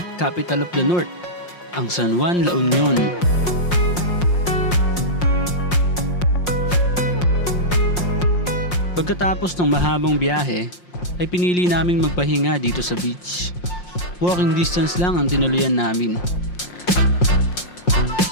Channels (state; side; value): late; right; 5.6 ms